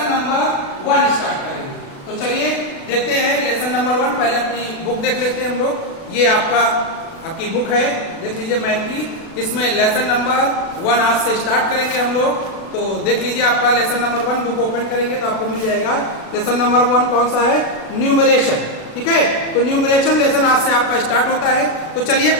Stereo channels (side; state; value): right; late; 36 ms